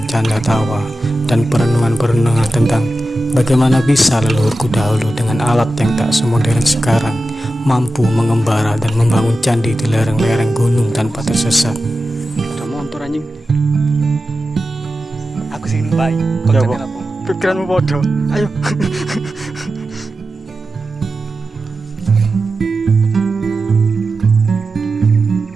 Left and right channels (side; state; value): both; normal; correlation 0.93